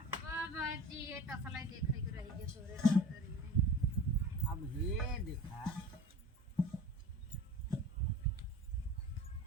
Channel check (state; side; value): normal; both; correlation 0.37